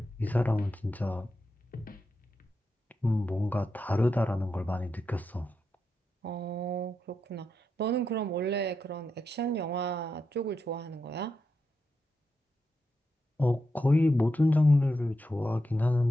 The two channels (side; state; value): both; normal; correlation 0.86